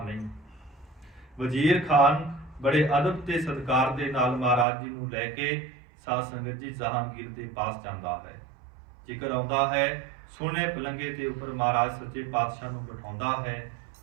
ਨਹੀਂ। ਵਜ਼ੀਰ ਖਾਨ ਬੜੇ ਅਦਬ ਤੇ ਸਤਿਕਾਰ ਦੇ ਨਾਲ ਮਹਾਰਾਜ ਜੀ ਨੂੰ ਲੈ ਕੇ ਸਾਧ ਸੰਗਤ ਜੀ ਜਹਾਂਗੀਰ ਦੇ ਪਾਸ ਜਾਂਦਾ ਹੈ। ਜ਼ਿਕਰ ਆਉਂਦਾ ਹੈ ਸੋਹਣੇ ਪਲੰਗੇ ਦੇ ਉੱਪਰ ਮਹਾਰਾਜ ਸੱਚੇ ਪਾਤਸ਼ਾਹ ਨੂੰ ਬਿਠਾਉਂਦਾ ਹੈ,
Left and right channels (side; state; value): left; drops out; at 4.7 s